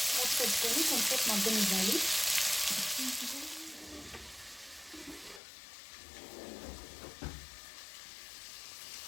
మూత పెట్టుకొని కొంచెం మగ్గనివ్వాలి.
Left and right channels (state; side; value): drops out; right; at 5.4 s